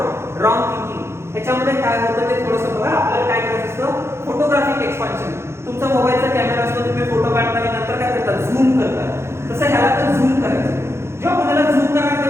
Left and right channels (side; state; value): left; late; 0.13 ms